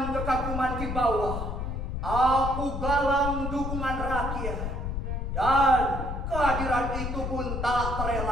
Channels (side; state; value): left; noise; rumble, 3 dB below the sound